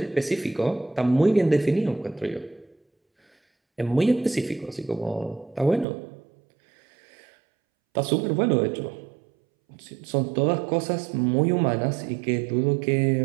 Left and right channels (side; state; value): left; drops out; at 5.9 s